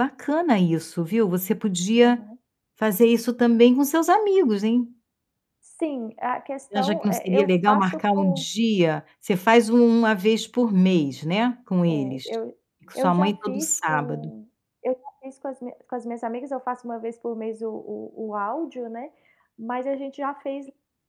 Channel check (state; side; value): identical; both; correlation 1.00